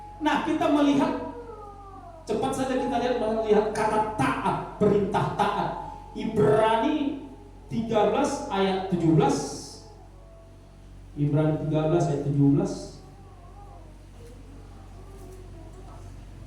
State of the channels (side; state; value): both; identical; correlation 1.00